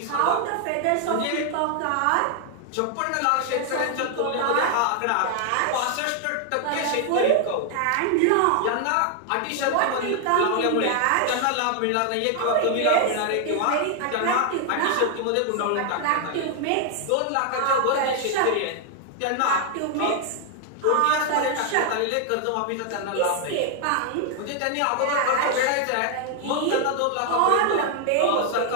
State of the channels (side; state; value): both; different; correlation 0.00